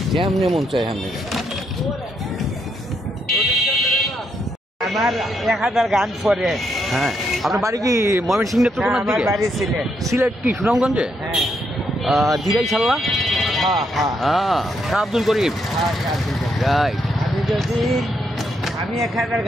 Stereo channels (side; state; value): both; normal; correlation 0.78